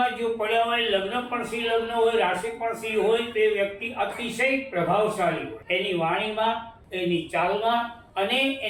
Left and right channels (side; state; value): both; identical; correlation 1.00